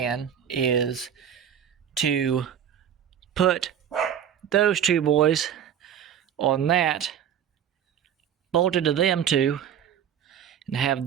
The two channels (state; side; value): quieter; left; 9.1 dB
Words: is to put those two boys on that, bolted to them two, and